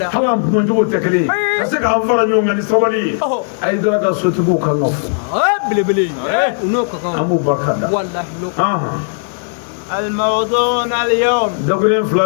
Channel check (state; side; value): silent; right; digital silence